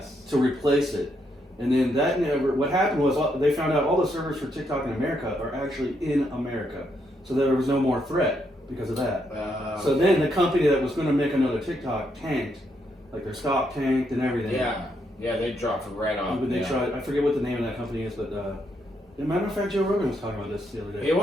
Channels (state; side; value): normal; both; correlation 0.77